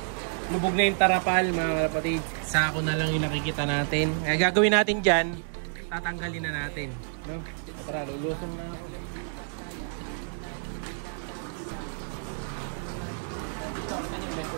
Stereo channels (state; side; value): silent; left; digital silence